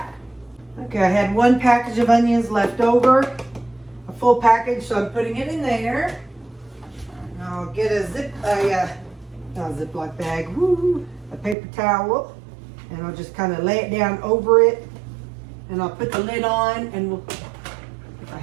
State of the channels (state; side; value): drops out; left; at 11.6 s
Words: Okay, I had one package of onions left over, a full package, so I'm putting it in there. And I'll get a Ziploc bag, a paper towel, and I'll just kind of lay it down over it, and I'll put the lid on, and if I